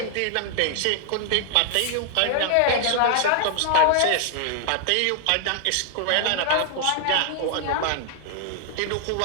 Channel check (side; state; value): both; different; correlation 0.00